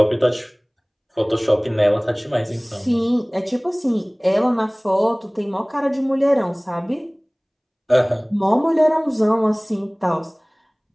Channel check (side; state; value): both; identical; correlation 1.00